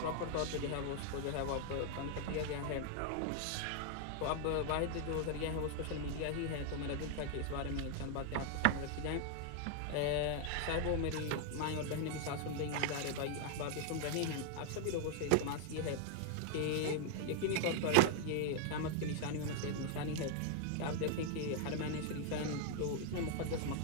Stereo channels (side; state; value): both; different; correlation 0.00